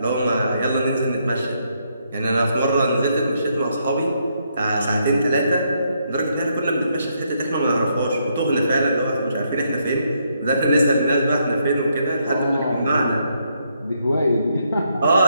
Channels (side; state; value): both; inverted; correlation -0.76